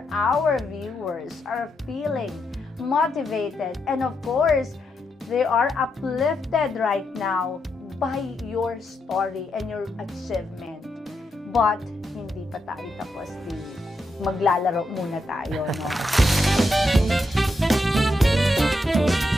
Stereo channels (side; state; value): both; normal; correlation 0.83